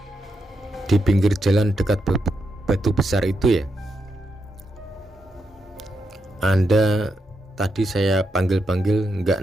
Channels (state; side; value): normal; both; correlation 0.83